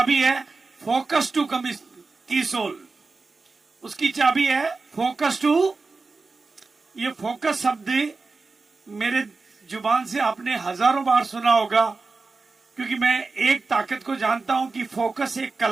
है फोकस टू कीसोल, उसकी चाबी है फोकस टू। ये फोकस शब्द मेरे जुबान से आपने हजारों बार सुना होगा, क्योंकि मैं एक ताकत को जानता हूं कि फोकस एक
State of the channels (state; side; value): quieter; left; 4.0 dB